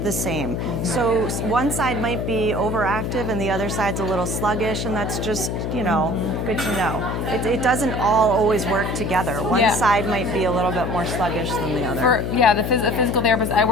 the same. So one side might be overactive and the other side's a little sluggish, and that's just, you know, good to know. It doesn't all always work together. One side might be a little bit more sluggish than the other. The physical therapist I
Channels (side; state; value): left; noise; hum, 2 dB below the sound